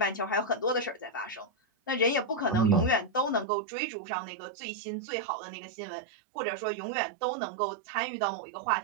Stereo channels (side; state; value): left; drops out; at 3.5 s